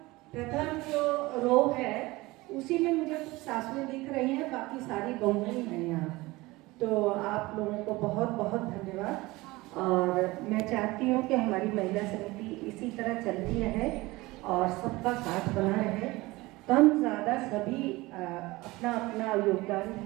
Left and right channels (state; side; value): quieter; left; 20.9 dB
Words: जो रो है उसी में मुझे कुछ सासुएं दिख रही हैं, बाकी सारी बहुएं ही हैं यहाँ। तो आप लोगों को बहुत बहुत धन्यवाद। और मैं चाहती हूँ कि हमारी महिला समिति इसी तरह चलती रहे और सबका साथ बना रहे। कम ज़्यादा सभी अपना अपना योगदान